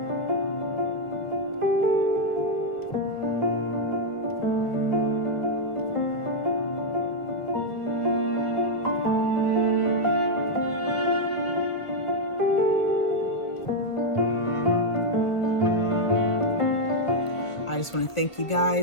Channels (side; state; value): right; late; 1.5 ms